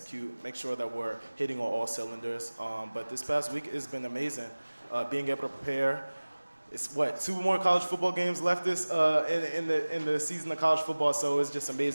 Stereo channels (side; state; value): both; inverted; correlation -1.00